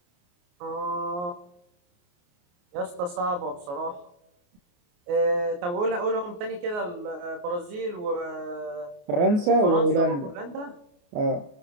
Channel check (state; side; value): late; left; 28 ms